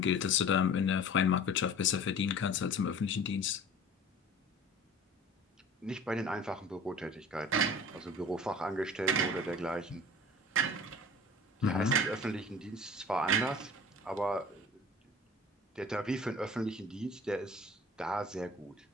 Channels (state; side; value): normal; both; correlation 0.42